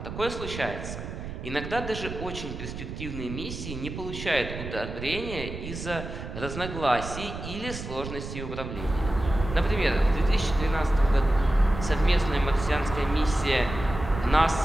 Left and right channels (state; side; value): noise; right; rumble, 8 dB below the sound